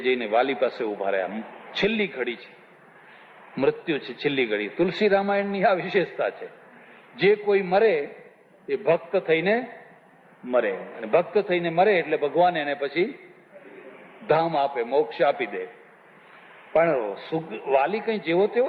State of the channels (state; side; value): identical; both; correlation 1.00